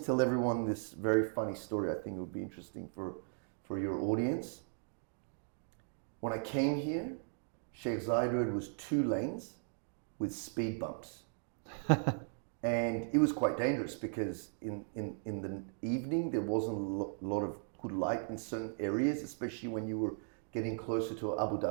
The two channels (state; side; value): silent; left; digital silence